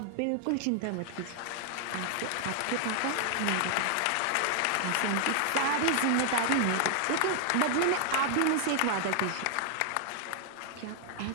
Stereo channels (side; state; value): both; different; correlation 0.00